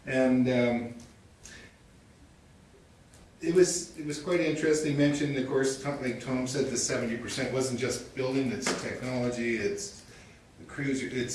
And it was quite interesting. They mentioned, of course, like Tom said, the 70% wasn't just building, it's technology, it's the crews,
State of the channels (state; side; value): identical; both; correlation 1.00